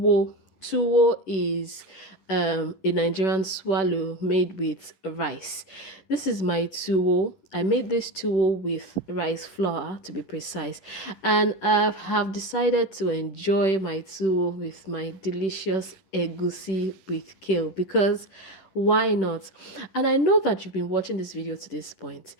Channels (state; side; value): late; right; 10 ms